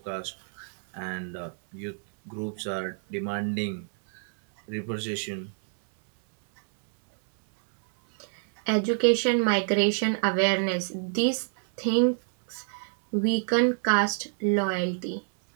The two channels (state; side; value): silent; left; 60 dB below the other